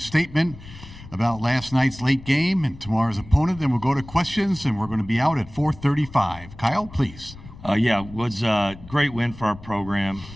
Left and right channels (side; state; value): left; noise; rumble, 17 dB below the sound